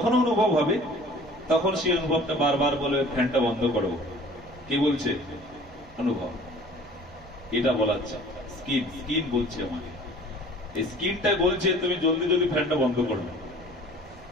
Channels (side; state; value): right; noise; rumble, 23 dB below the sound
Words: অনুভব হবে। তখন সেই অনুভবটা বারবার বলে ফ্যানটা বন্ধ করো। কি বলছে? অনুভব। এটা বলাচ্ছে স্কিন বলছে আমাকে, এই স্কিনটা বলছে তুমি জলদি জলদি ফ্যানটা বন্ধ করো।